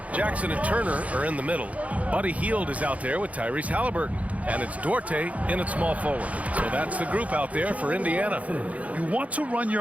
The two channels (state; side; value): late; left; 0.068 ms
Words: Jackson and Turner are in the middle. Buddy Hield is out there with Tyrese Halliburton. And it's Duarte in at small forward. So that's the group out there for Indiana. You want to run